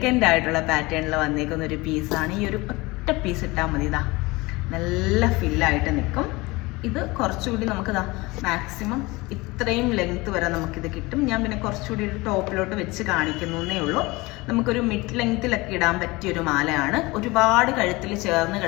ആയിട്ടുള്ള പാറ്റേണിൽ വന്നേക്കുന്ന ഒരു പീസാണ്. ഈ ഒരു ഒറ്റ പീസ് ഇട്ടാൽ മതി, ഇതാ നല്ല ഫില്ലായിട്ട് നിൽക്കും. ഇത് കുറച്ചുകൂടി നമുക്കിതാ മാക്സിമം ഇത്രയും ലെങ്ത് വരെ നമുക്കിത് കിട്ടും. ഞാൻ പിന്നെ കുറച്ചുകൂടി ഒരു ടോപ്പിലോട്ട് വെച്ച് കാണിക്കുന്നേ ഉള്ളൂ. നമുക്കൊരു മിഡ് ലെങ്ത്തിലൊക്കെ ഇടാൻ പറ്റിയൊരു മാലയാണ്. ഒരുപാട് കഴുത്തിൽ ചേർന്ന്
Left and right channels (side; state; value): right; quieter; 22.7 dB